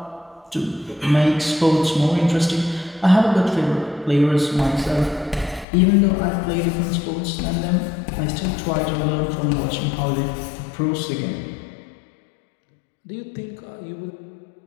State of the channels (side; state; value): right; drops out; at 5.7 s